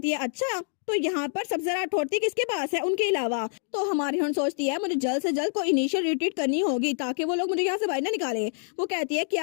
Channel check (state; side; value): silent; right; digital silence